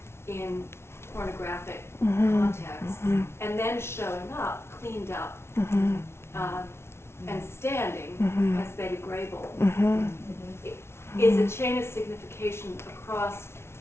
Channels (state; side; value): late; right; 0.12 ms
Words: in pornographic context, and then showing up, cleaned up, and standing as Betty Grable. It is a chain of signification across